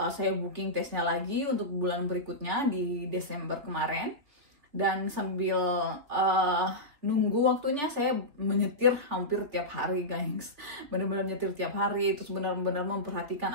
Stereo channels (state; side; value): late; left; 3.3 ms